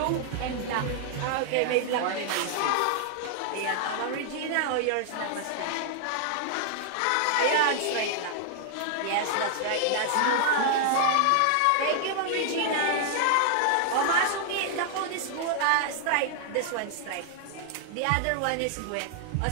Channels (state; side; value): different; both; correlation 0.00